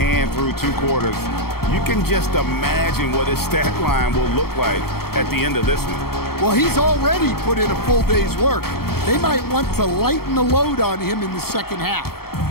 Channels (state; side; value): late; right; 0.95 ms